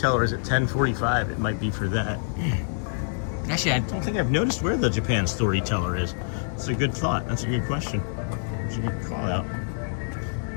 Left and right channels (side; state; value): right; silent; digital silence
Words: is at 10:45. It might be for that. Actually, I don't think I've noticed where the Japan Storyteller is. That's a good thought. That's a good question. That's a good call out.